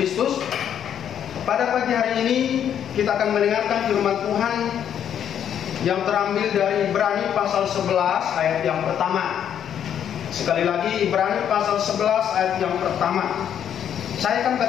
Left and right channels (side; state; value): right; quieter; 9.3 dB